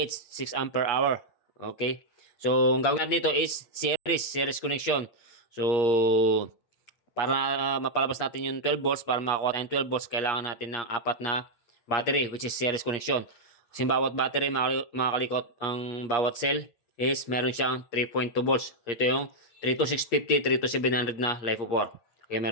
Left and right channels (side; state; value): right; late; 8.4 ms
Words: 6 ampere hour. Okay? So, ang gawin natin dito is series connection. So, para mapalabas natin yung 12 volts, para makakuha tayong 12 volts, kailangan natin ng apat na battery, which is series connection. Kasi bawat battery, mga kalikot, ang bawat cell is meron siyang 3.2 volts. Ito yung 32650, 32700 na LiFeO4. Okay,